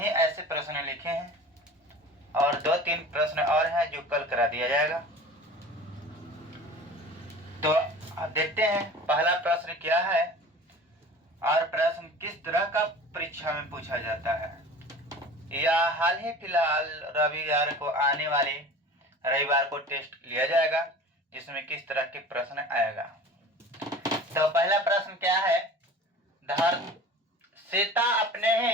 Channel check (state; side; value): normal; both; correlation 0.40